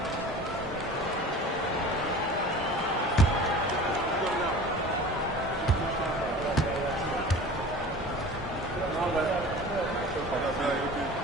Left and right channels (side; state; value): both; normal; correlation 0.39